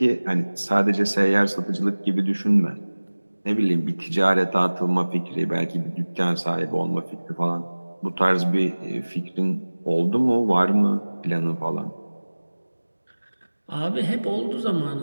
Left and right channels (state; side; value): inverted; both; correlation -1.00